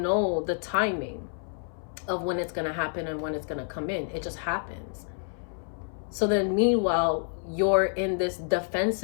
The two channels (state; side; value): silent; right; 59 dB below the other